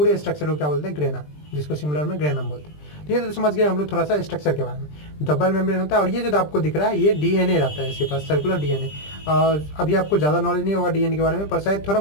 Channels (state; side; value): late; right; 20 ms